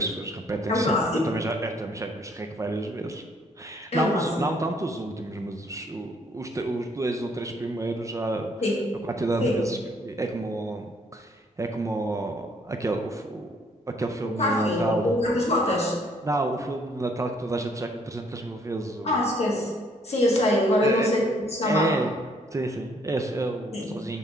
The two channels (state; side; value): normal; both; correlation 0.65